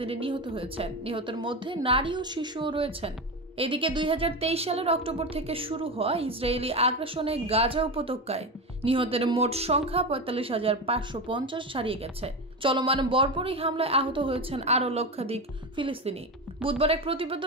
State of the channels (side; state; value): both; normal; correlation 0.20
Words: নিহত হয়েছেন। নিহতের মধ্যে নারী ও শিশুও রয়েছেন। এদিকে 2023 সালের অক্টোবর থেকে শুরু হওয়া ইসরায়েলি আগ্রাসনে গাজা উপত্যকায় নিহতের মোট সংখ্যা 45,550 ছাড়িয়ে গেছে। চলমান বর্বরী হামলায় আহত হয়েছেন আরও লক্ষাধিক ফিলিস্তিনি। বুধবার এক